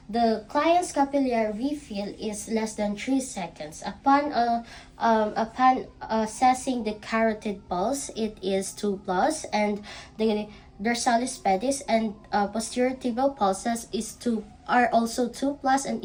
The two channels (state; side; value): identical; both; correlation 1.00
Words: the client's capillary refill is less than 3 seconds. Upon assessing the carotid pulse, it is 2 plus, and the dorsalis pedis and posterior tibial pulses are also 2 plus and